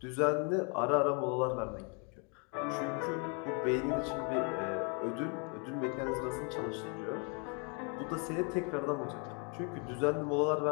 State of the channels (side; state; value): right; quieter; 34.8 dB